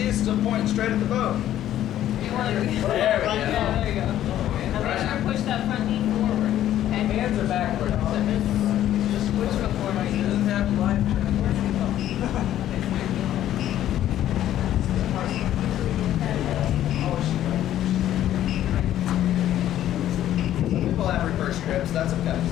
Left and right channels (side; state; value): right; quieter; 12.2 dB